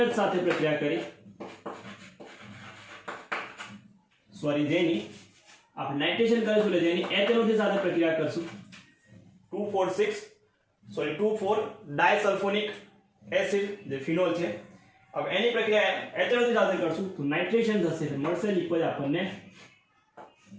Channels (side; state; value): both; identical; correlation 1.00